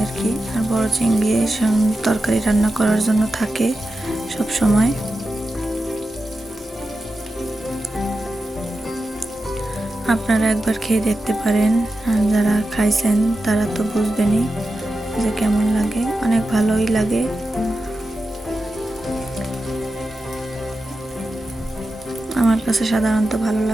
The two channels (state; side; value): normal; both; correlation 0.91